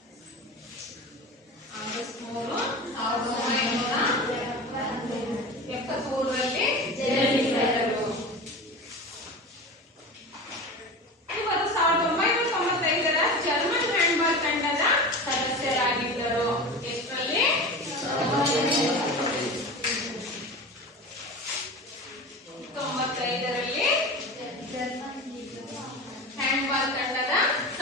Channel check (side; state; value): both; normal; correlation 0.30